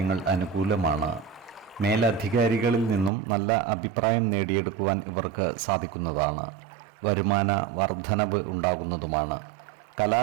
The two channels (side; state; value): left; drops out; at 3.1 s